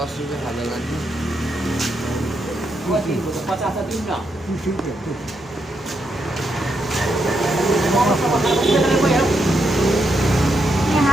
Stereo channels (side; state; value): both; normal; correlation 0.81